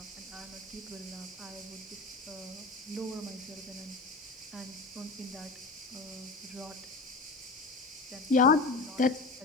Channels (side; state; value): right; quieter; 3.6 dB